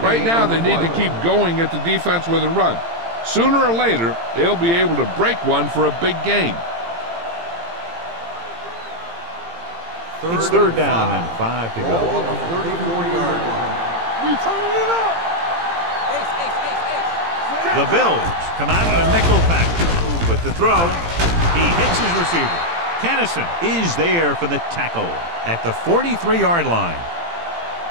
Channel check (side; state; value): left; late; 18 ms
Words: now, they need to keep going at the defense with a run. Sooner or later, they'll be able to break one for a big gain. It's 3rd down and 5 to Ball go. on the 34-yard line. We turning it up. The Bills come out in a nickel package. With the throw, he hits his receiver. Kennison is there for the tackle at the 43-yard line.